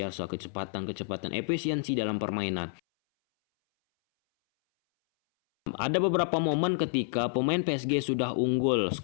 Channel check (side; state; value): right; silent; 59 dB below the other